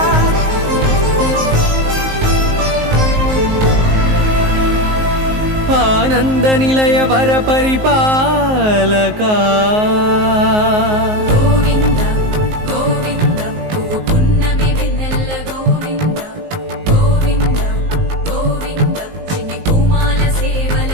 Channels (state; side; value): late; left; 19 ms